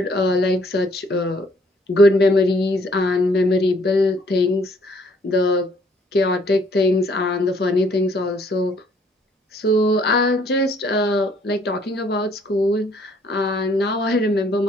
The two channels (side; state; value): both; normal; correlation 0.63